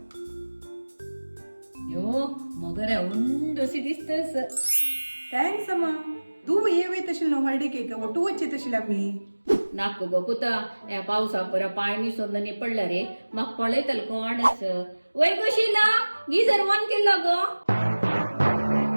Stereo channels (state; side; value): inverted; both; correlation -1.00